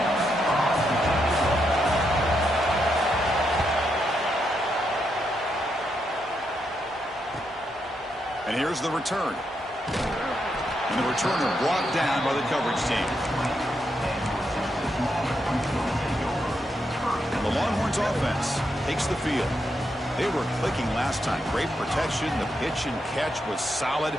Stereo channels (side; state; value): both; normal; correlation 0.81